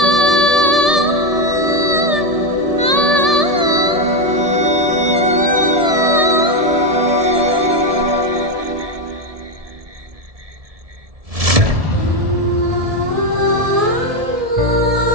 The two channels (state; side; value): late; left; 1.7 ms